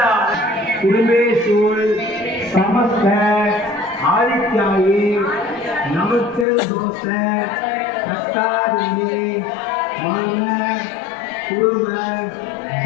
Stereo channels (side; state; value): right; drops out; at 6.5 s